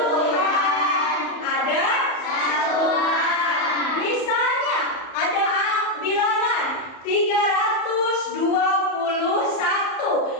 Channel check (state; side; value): late; right; 34 ms